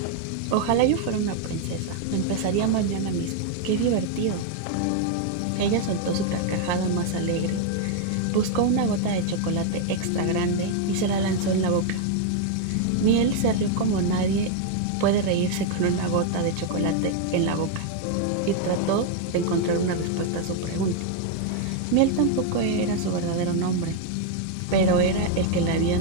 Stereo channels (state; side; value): different; both; correlation 0.00